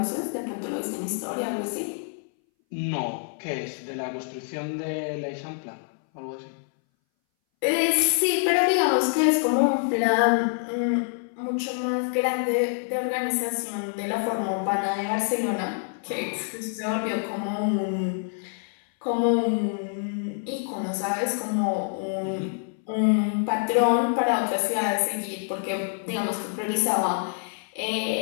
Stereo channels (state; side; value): silent; right; 59 dB below the other